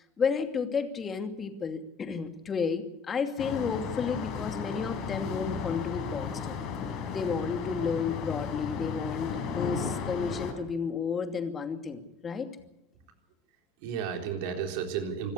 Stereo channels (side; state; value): right; quieter; 4.4 dB